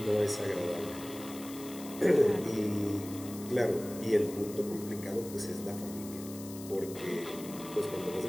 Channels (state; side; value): noise; left; hiss, 15 dB below the sound